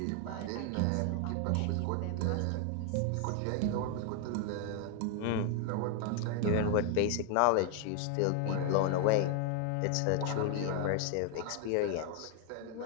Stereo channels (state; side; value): different; both; correlation 0.00